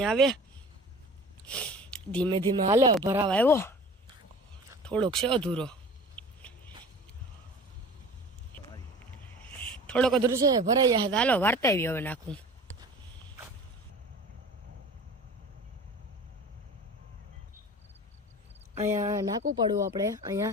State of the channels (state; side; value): normal; both; correlation 0.41